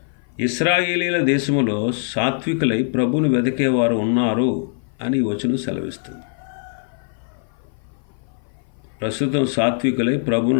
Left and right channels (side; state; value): right; silent; 56 dB below the other